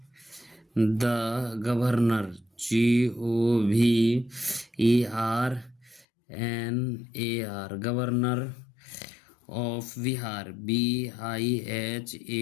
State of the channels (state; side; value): drops out; right; at 6.1 s